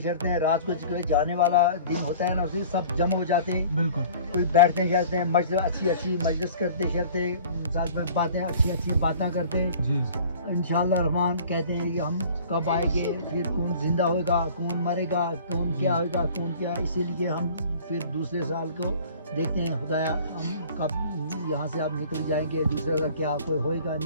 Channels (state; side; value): inverted; both; correlation -0.47